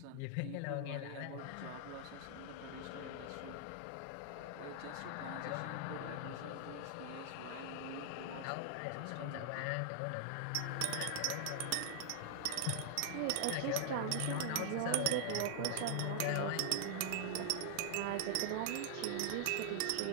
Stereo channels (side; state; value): both; different; correlation 0.00